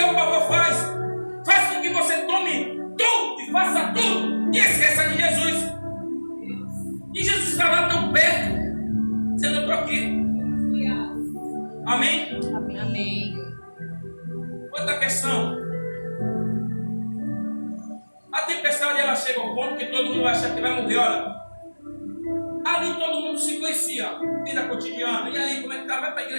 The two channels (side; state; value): both; inverted; correlation -1.00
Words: o pavor faz com que você tome tudo e faça tudo e esqueça de Jesus. E Jesus está lá tão perto, dizendo: eu estou aqui. Amém? Amém. Outra questão. A tempestade um ponto que todo mundo vai achar que vai morrer, olha. Ali todo mundo se conhecia, vida cotidiana. E aí, como é que tá? Vai para a